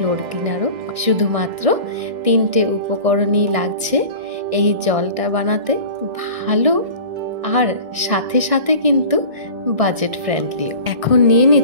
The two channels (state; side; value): late; left; 1.6 ms